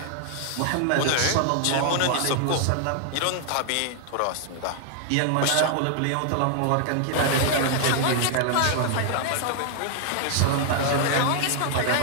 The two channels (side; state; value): both; different; correlation 0.00